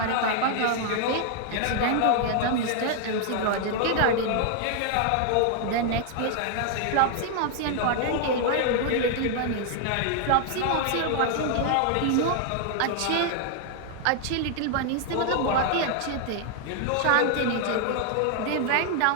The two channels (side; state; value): both; different; correlation 0.00